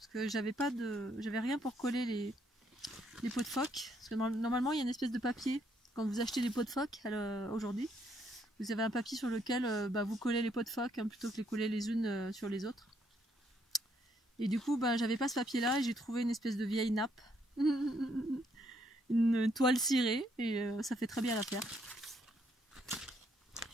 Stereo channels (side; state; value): both; normal; correlation 0.72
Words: que j'avais rien pour coller les pots de phoque. Parce que normalement, il y a une espèce de papier quand vous achetez des pots de phoque aujourd'hui. Vous avez un papier sur lequel vous collez les pots de phoque hein, plutôt que les coller les unes sur les autres. Et du coup, j'avais pas ce papier-là et j'ai trouvé une espèce de vieille nappe. Une toile cirée et ça fait très bien l'affaire.